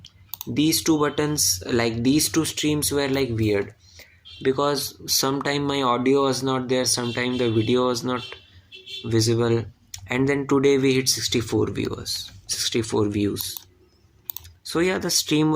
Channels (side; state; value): both; identical; correlation 1.00